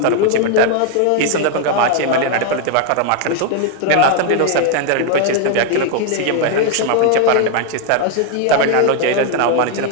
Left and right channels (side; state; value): both; different; correlation 0.01